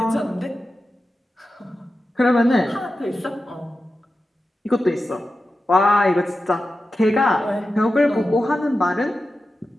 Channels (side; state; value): both; normal; correlation 0.92